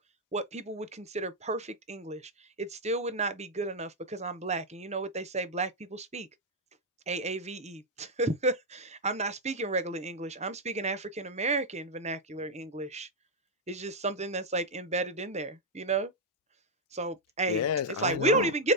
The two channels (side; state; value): both; normal; correlation -0.01